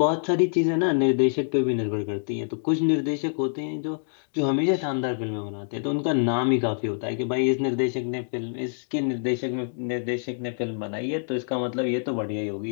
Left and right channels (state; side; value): silent; right; digital silence